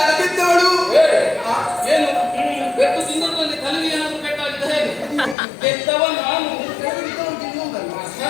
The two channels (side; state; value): right; drops out; at 5.4 s